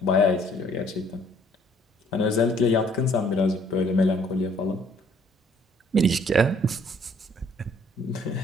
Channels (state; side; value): normal; both; correlation 0.60